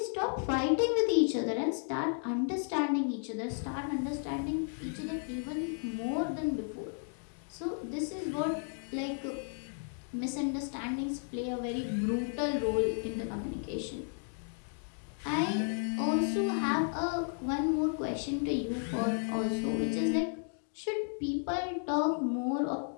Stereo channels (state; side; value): silent; right; 55 dB below the other